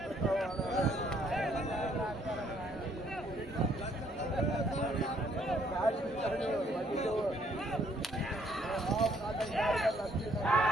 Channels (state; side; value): normal; both; correlation 0.66